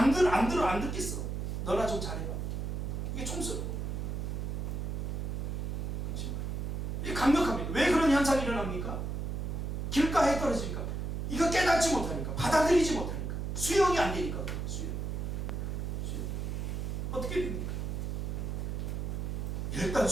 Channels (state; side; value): noise; right; hum, 2 dB below the sound